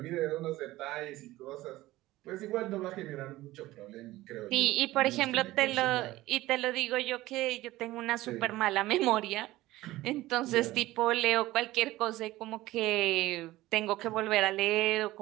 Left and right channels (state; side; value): quieter; left; 17.2 dB